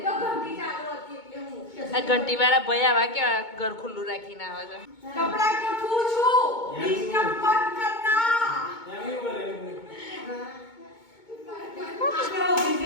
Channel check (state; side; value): late; right; 2.2 ms